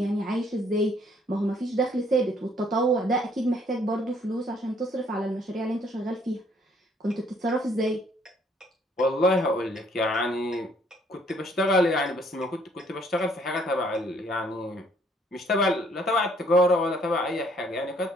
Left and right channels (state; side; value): normal; both; correlation 0.64